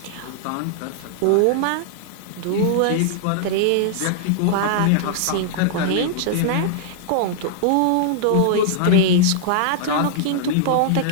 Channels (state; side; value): different; both; correlation -0.01